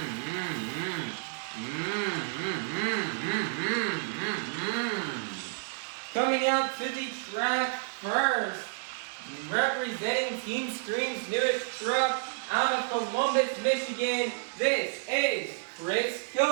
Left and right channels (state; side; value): silent; left; digital silence